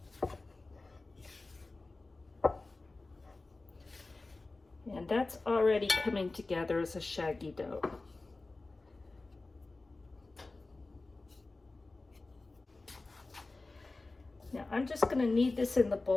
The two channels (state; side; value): quieter; right; 3.3 dB